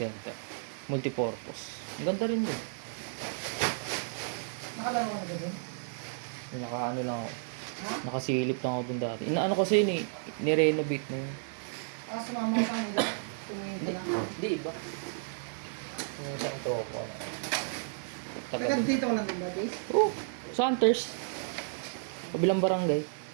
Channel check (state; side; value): silent; left; digital silence